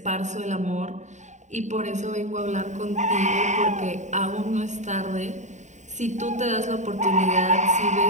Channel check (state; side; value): late; left; 0.34 ms